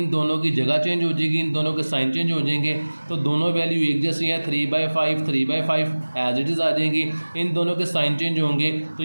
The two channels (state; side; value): inverted; both; correlation -1.00